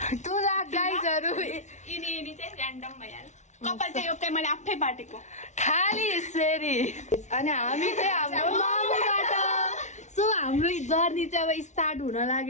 2 लाख गाइजहरू यिनी चाहिँ ऱ्यान्डम भइहाल्यो। कपाल चाहिँ यो चाहिँ मैले आफै बाटेको खाली यसरी। अनि हामी चाहिँ हाम्रो मामुबाट। सो हाम्रो जर्नी चाहिँ अब स्टार्ट हुन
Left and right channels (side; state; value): right; late; 0.34 ms